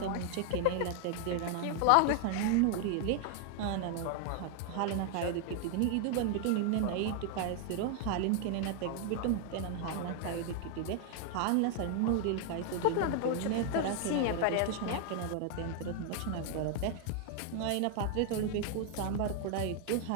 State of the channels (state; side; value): different; both; correlation 0.00